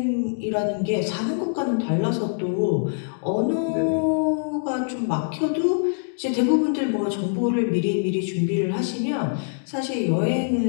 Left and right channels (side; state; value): right; silent; digital silence